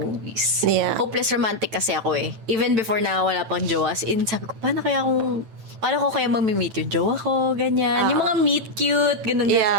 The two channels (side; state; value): left; late; 9.0 ms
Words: Yeah. Hopeless romantic kasi ako eh. Even before na wala pang jowa. As in, sabi ko, paano ko kaya mamimit yung jowa ko? Ganyan. Yung mga meet cute, ganun.